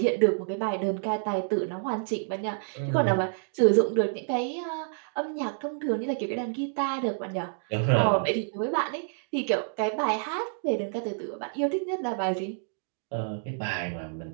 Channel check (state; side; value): silent; left; digital silence